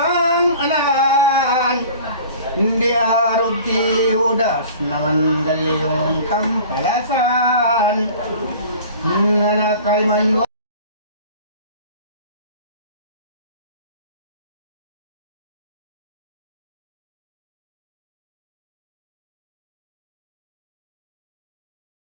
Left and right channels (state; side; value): inverted; both; correlation -0.43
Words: anan di arog ti Judas naman galyong kampalasan nanakay man